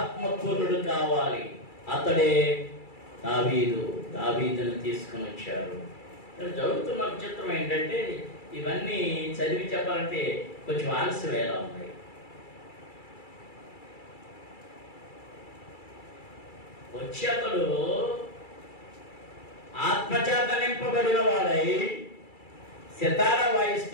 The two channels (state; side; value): late; right; 2.3 ms